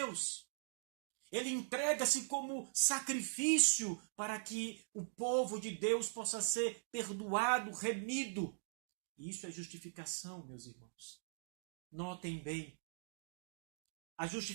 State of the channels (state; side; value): silent; left; digital silence